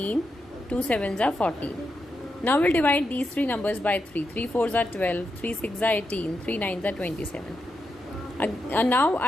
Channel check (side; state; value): both; normal; correlation 0.85